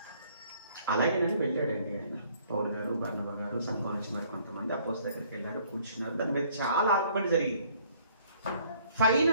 అలాగేనని వెళ్ళాడండి ఆయన, పౌలు గారు, బర్నబా గారు, సంఘం నుంచి మరి కొంతమంది అపోస్తలుల దగ్గరికి వెళ్ళారు, కూర్చున్నారు. దాని మీద చాలా ఆర్గ్యుమెంట్ జరిగింది.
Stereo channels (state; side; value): inverted; both; correlation -0.60